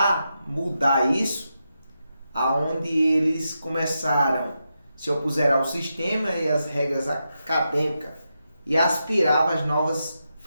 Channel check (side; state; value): both; inverted; correlation -0.87